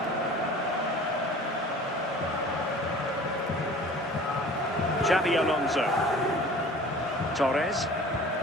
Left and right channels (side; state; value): both; normal; correlation 0.45